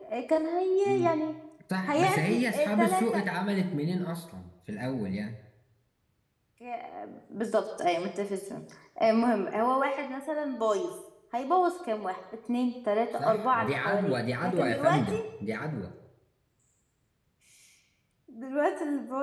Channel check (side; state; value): both; identical; correlation 1.00